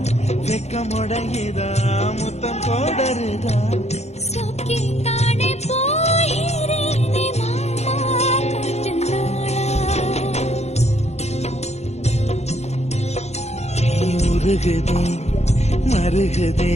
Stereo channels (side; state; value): right; late; 0.32 ms